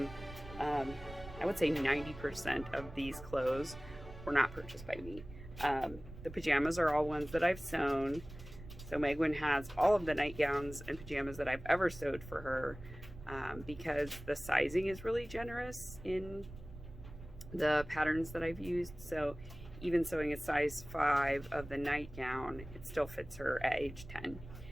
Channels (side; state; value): right; noise; rumble, 15 dB below the sound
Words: I would say 90% of these clothes were not purchased by me. The pajamas are all ones that I've sewn. So Megwin has all of the nightgowns and pajamas that I've ever sewed for her, because the sizing is really generous in the patterns that I've used. So even sewing a size 5 of the nightgown, it still fits her at age 10.